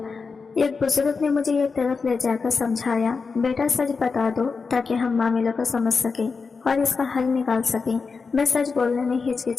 ایک بزرگ نے مجھے ایک طرف لے جا کر سمجھایا، بیٹا سچ بتا دو تاکہ ہم معاملے کو سمجھ سکیں اور اس کا حل نکال سکیں۔ میں سچ بولنے میں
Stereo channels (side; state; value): right; quieter; 4.8 dB